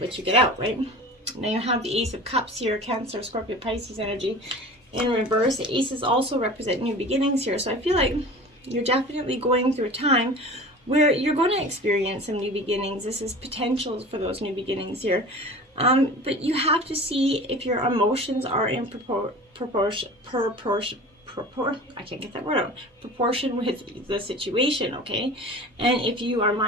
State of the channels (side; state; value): both; normal; correlation 0.38